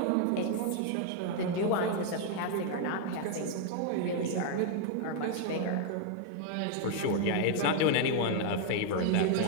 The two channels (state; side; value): different; both; correlation 0.00